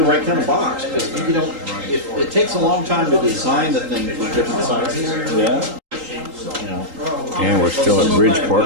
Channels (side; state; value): left; late; 3.8 ms